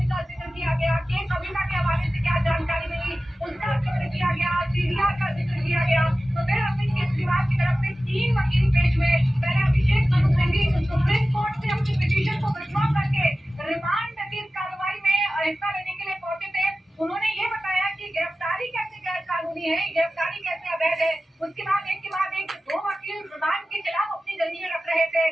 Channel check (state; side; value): normal; both; correlation 0.95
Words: का जिक्र किया गया, के कविता के हवाले से क्या जानकारी मिली उसका जिक्र किया गया, सीडीआर का जिक्र किया गया। तो फिर अरविंद केजरीवाल की तरफ से 3 वकील पेश हुए। पहले अभिषेक मनु सिंघवी सुप्रीम कोर्ट से अपनी पिटीशन को विड्रॉ करके रिमांड की इस कार्रवाई में हिस्सा लेने के लिए पहुंचे थे। उन्होंने ये बताया कि गिरफ्तारी कैसे गैर कानूनी है, गिरफ्तारी कैसे अवैध है। उसके बाद एक के बाद एक 2 वकील रिमांड के खिलाफ अपनी दलीलें रख रहे थे।